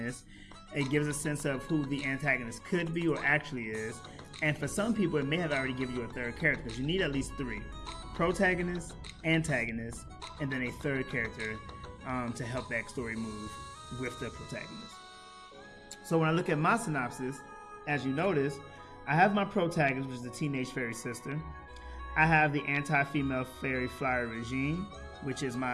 It gives a sense of who the antagonist could be or actually is. And for some people, it may have already given you a third character because you need at least three: protagonist, antagonist, and then a third character to help that story move with the protagonist. So when I look at my synopsis, as you notice, I have my protagonist, which is the teenage fairy sister. I have the anti-female fairy flyer regime, which is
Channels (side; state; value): both; identical; correlation 1.00